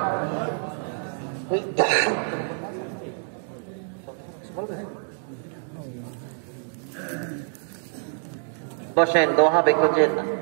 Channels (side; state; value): left; silent; 58 dB below the other